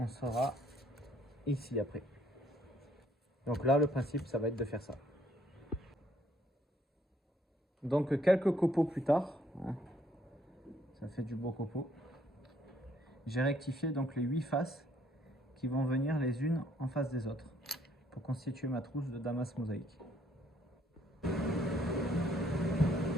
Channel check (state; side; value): normal; both; correlation 0.66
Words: sera ici après. Donc là, le principe, ça va être de faire ça. Donc quelques copeaux plus tard, hein, ça fait du beau copeau. J'ai rectifié donc les 8 faces qui vont venir les unes en face des autres pour constituer ma trousse de damas mosaïque.